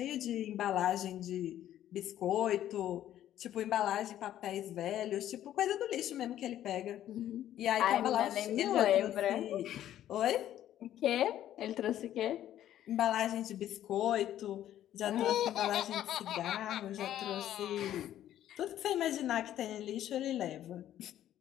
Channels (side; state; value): right; quieter; 12.0 dB